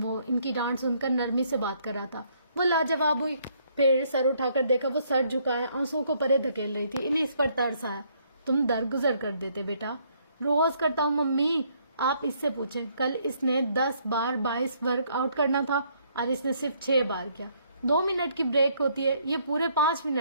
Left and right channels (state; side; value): inverted; both; correlation -0.68